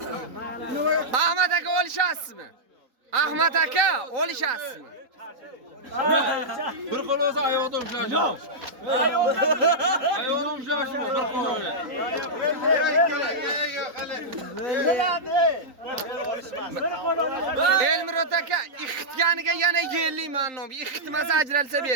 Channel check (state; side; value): late; left; 3.9 ms